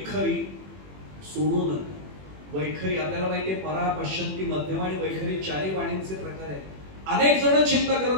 सोडू नका. वैखरी आपल्याला माहितीये, परा पश्यंती मध्यम आणि वैखरी 4 वाणींचे प्रकार आहेत. अनेक जण चिंता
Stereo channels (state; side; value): late; left; 21 ms